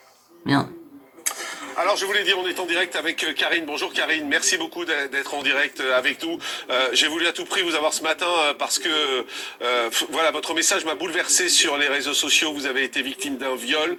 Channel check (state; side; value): identical; both; correlation 1.00